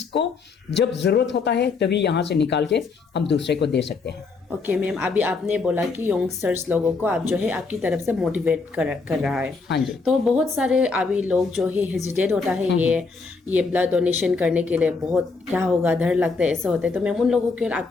जब ज़रूरत होता है तभी यहाँ से निकाल के हम दूसरे को दे सकते हैं। ओके मैम, अभी आपने बोला कि यंगस्टर्स लोगों को आप जो है आपकी तरफ से मोटिवेट कर रहा है। हाँ जी। तो बहुत सारे अभी लोग जो है हेजिटेट होता है ये ब्लड डोनेशन करने के लिए, बहुत क्या होगा, डर लगता है, ऐसे होता है, तो मैम उन लोगों को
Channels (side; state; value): right; quieter; 4.4 dB